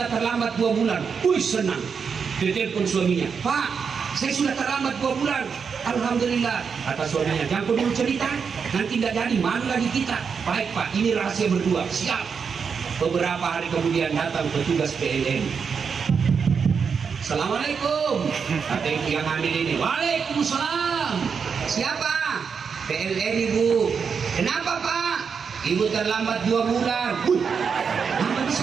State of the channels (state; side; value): quieter; left; 6.1 dB